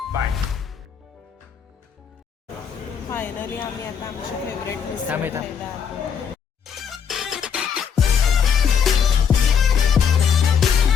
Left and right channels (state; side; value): quieter; right; 7.3 dB